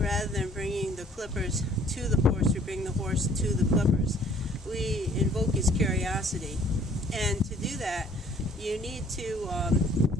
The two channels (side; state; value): both; normal; correlation 0.57